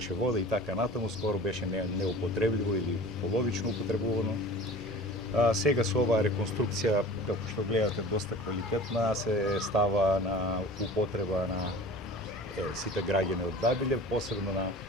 вода и така натаму, скоро беше неупотребливо или половично употребувано. Сега со оваа реконструкција, како што гледате, доста квалитетна, се става на употреба на сите граѓани од Дабиле, посебно на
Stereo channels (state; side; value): normal; both; correlation 0.40